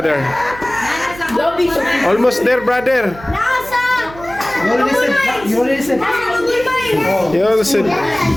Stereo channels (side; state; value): right; noise; hum, 18 dB below the sound